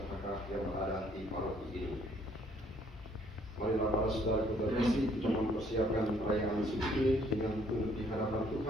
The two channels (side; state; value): both; normal; correlation 0.64